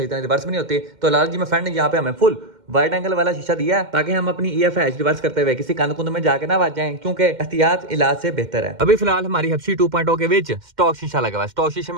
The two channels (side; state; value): left; late; 2.1 ms